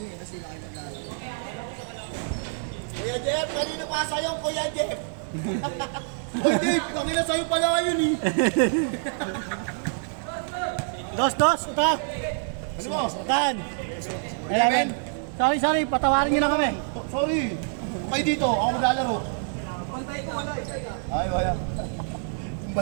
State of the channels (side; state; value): left; silent; digital silence